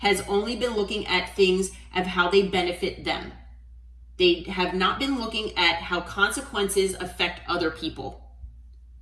only been looking at things of how they benefit them. They have not been looking at how consequences affect other people.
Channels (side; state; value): both; identical; correlation 1.00